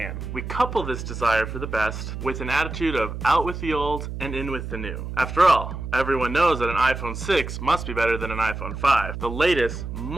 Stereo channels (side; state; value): right; noise; hum, 7 dB below the sound